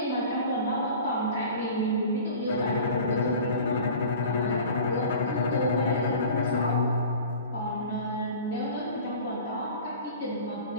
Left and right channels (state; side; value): inverted; both; correlation -0.40